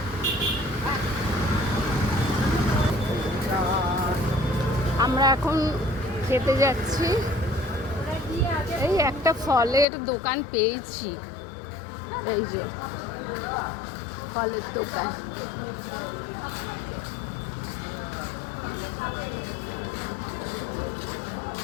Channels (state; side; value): drops out; right; at 9.9 s